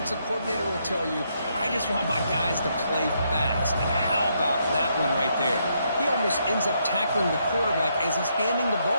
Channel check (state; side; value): inverted; both; correlation -0.76